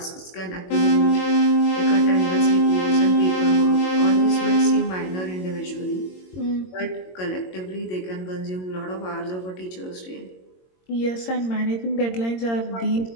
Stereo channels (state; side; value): late; right; 22 ms